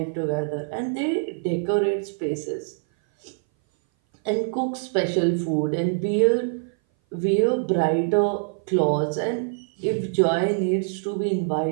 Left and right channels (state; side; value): silent; left; 59 dB below the other